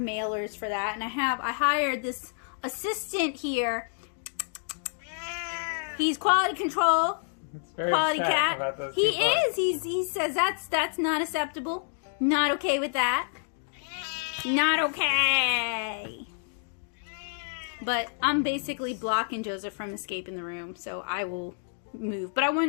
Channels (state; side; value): silent; right; digital silence